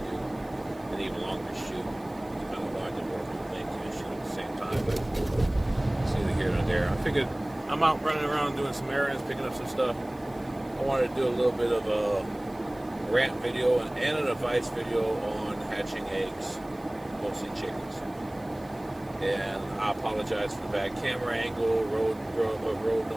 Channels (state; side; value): noise; right; hiss, 26 dB below the sound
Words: do an even longer shoot. It's kind of hard to work on things and shoot at the same time, but it's either here or there. I figured I'm out running around doing some errands, picking up some stuff. I wanted to do a little bit of a rant video and an advice video on hatching eggs, mostly chickens. And I apologize for the bad camera angle, road